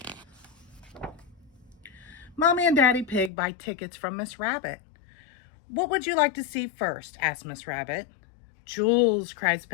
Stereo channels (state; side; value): drops out; right; at 3.3 s